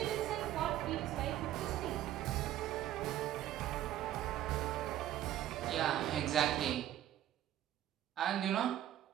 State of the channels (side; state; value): left; quieter; 12.5 dB